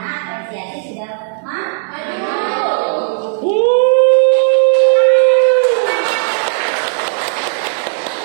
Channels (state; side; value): silent; left; digital silence